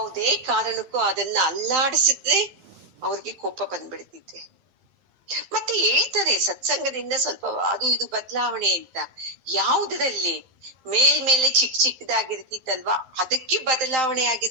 ಕಾರಣಕ್ಕೂ ಅದನ್ನ ಅಲ್ಲಾಡಿಸಿದ್ರೆ ಅವ್ರಿಗೆ ಕೋಪ ಬಂದ್ಬಿಡ್ತಿದೆ. ಮತ್ತೆ ಹೇಳ್ತಾರೆ ಸತ್ಸಂಗದಿಂದ ಸ್ವಲ್ಪ ಅದು ಇದು ಬದಲಾವಣೆ ಅಂತ. ಯಾವುದರಲ್ಲಿ ಮೇಲ್ಮೇಲೆ ಚಿಕ್ಕದಾಗಿರ್ತಿತ್ತಲ್ವಾ ಅದಕ್ಕೆ ಬದಲಾವಣೆ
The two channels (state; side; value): late; left; 12 ms